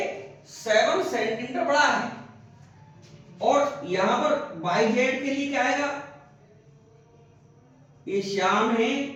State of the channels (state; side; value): identical; both; correlation 1.00